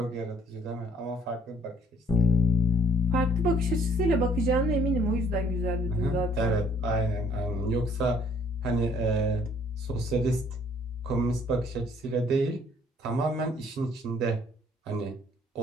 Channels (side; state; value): both; normal; correlation 0.62